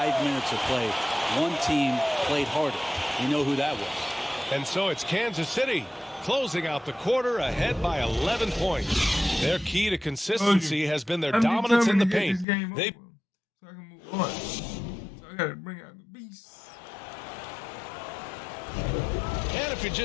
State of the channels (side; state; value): right; drops out; at 12.5 s